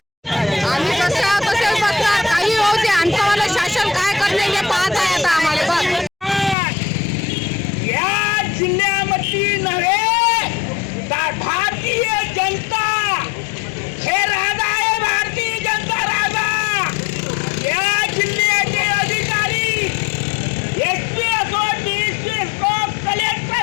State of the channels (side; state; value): right; drops out; at 6.6 s